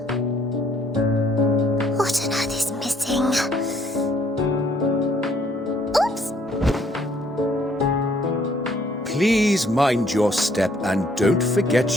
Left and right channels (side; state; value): both; normal; correlation 0.64